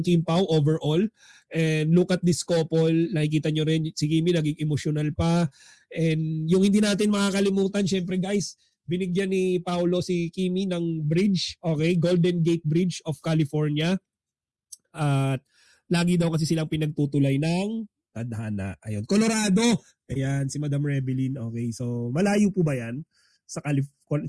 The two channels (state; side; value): identical; both; correlation 1.00